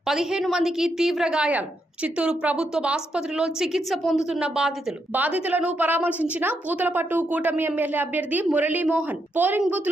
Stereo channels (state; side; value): normal; both; correlation 0.80